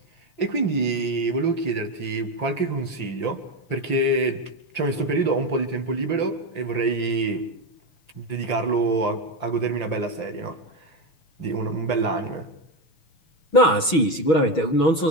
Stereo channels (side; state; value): right; late; 6.2 ms